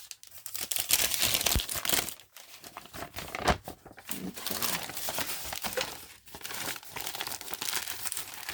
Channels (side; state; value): both; identical; correlation 1.00